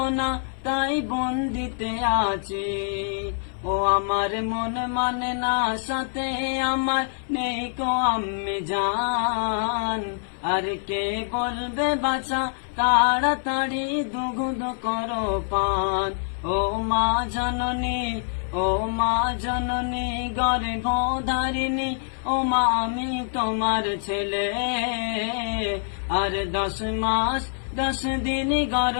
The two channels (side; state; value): right; silent; 57 dB below the other